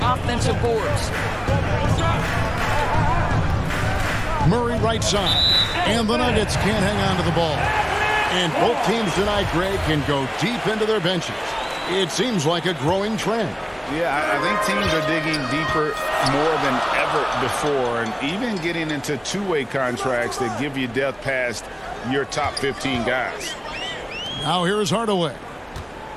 offensive boards. Murray right side, and the Nuggets can't hang on to the ball. And both teams tonight, Greg, can go deep into their benches. It seems like a growing trend. Yeah, I think teams are digging deeper more than ever before, and even getting into two-way contracts that give you depth past your top 15 guys. Now here's Hardaway.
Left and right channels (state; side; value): identical; both; correlation 1.00